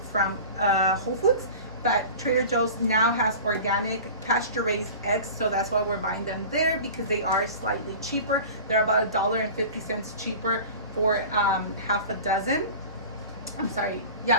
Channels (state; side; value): inverted; both; correlation -0.37